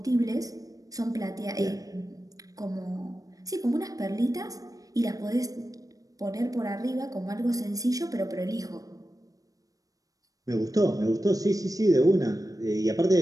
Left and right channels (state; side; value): late; left; 0.17 ms